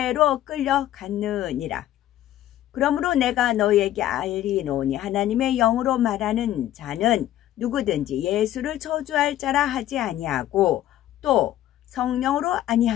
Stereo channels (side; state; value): right; quieter; 13.0 dB